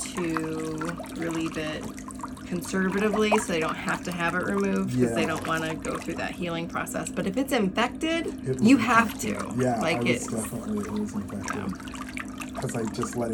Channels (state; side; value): identical; both; correlation 1.00